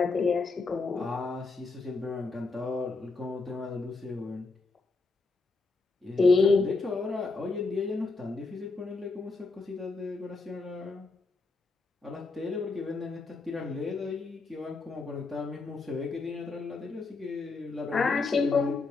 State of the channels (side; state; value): right; quieter; 3.9 dB